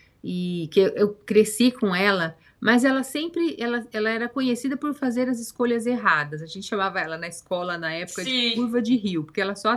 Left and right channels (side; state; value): both; identical; correlation 1.00